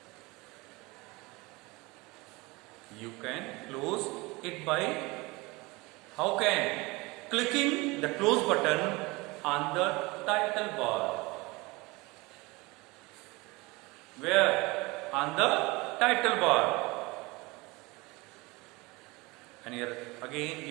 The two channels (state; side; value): quieter; left; 23.8 dB